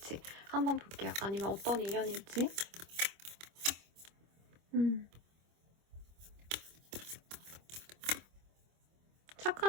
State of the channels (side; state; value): left; late; 25 ms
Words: 한번 볼게요. 아니면 어떤 인연일지.